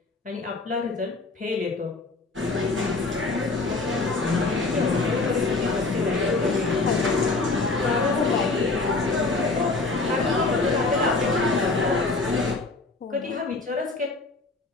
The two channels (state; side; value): quieter; right; 3.5 dB